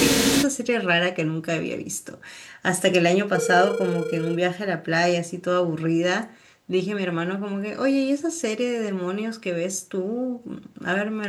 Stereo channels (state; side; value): identical; both; correlation 1.00